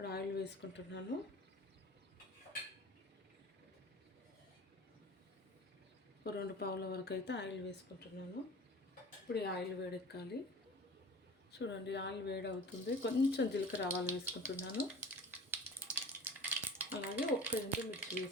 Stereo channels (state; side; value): normal; both; correlation 0.39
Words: ఆయిల్ వేసుకుంటున్నాను. ఒక 2 పావుల వరకు అయితే ఆయిల్ వేసుకుంటున్నాను. ఇప్పుడు ఈ ఆయిల్ వేడెక్కాలి. చూడండి, ఆయిల్ వేడి అవుతుంది. కొంచెం జీలకర్ర ఆవాలు వేసుకుంటున్నాను. అలాగే 1 ఎండుమిర్చి